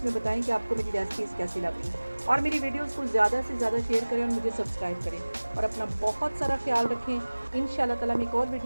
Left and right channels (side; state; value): both; inverted; correlation -1.00